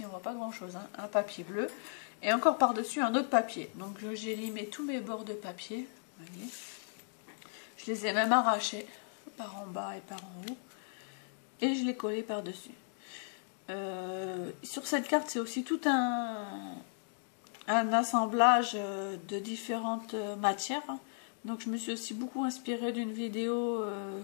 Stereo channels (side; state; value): right; silent; digital silence